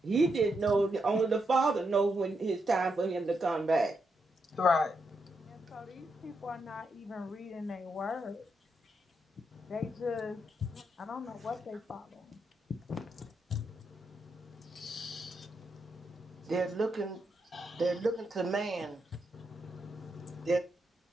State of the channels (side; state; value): both; normal; correlation 0.82